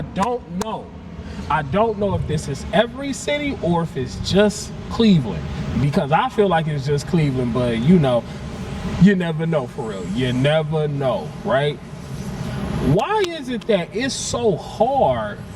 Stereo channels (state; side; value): identical; both; correlation 1.00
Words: don't know if this is every city or if it's just Cleveland, because I feel like it's just Cleveland, but you know, you never know, for real. You never know, right? Why is it that it's so hard